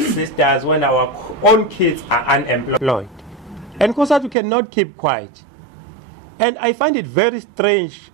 sisters, when our own kids are unemployed? And Cosatu cannot keep quiet. And I find it very strange,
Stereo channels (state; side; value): drops out; left; at 4.4 s